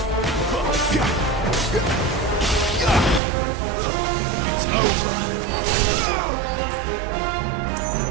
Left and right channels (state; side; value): drops out; left; at 3.2 s